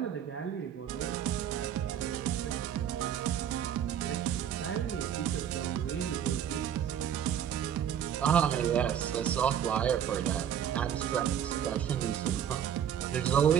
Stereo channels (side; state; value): left; quieter; 9.3 dB